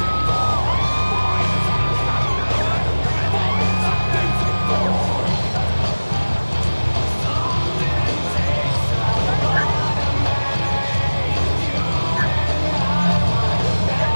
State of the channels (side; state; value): both; inverted; correlation -1.00